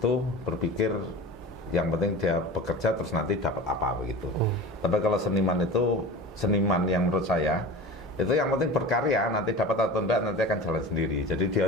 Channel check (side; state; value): both; normal; correlation 0.33